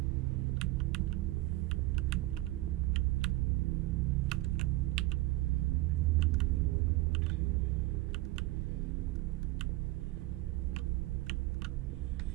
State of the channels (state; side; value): quieter; left; 18.8 dB